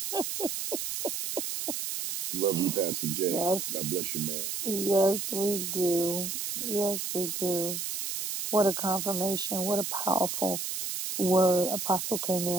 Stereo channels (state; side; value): noise; right; hiss, 3 dB below the sound